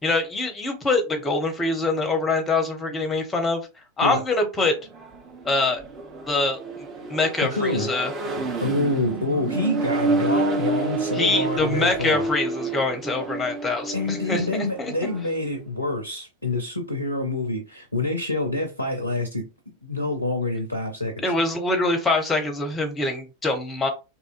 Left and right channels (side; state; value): both; normal; correlation 0.21